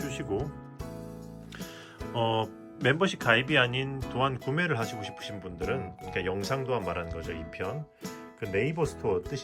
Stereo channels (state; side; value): identical; both; correlation 1.00